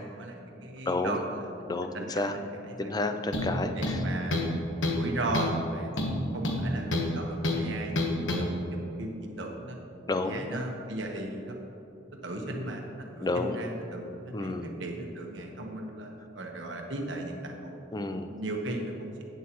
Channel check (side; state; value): both; normal; correlation 0.52